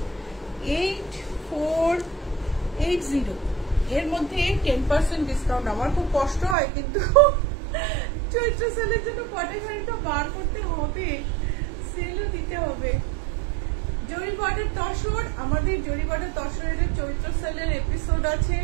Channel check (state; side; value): drops out; left; at 6.6 s